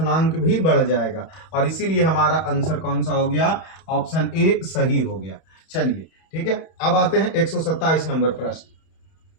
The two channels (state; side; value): late; right; 31 ms